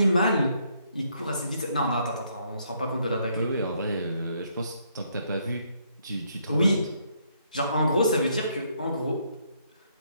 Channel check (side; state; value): both; inverted; correlation -0.71